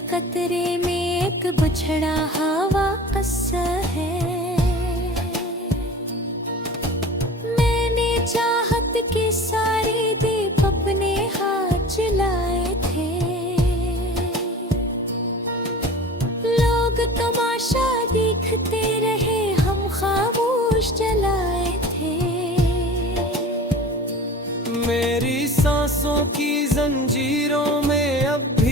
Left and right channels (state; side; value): normal; both; correlation 0.38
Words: कतरे में एक बिछड़ा हवा किस्सा है। मैंने चाहत के सारे दीप अपने हाथ जलाए थे। लोग तमाशा देखते रहे, हम खामोश जलाए थे। मेरी सांसों की जंजीरों में अब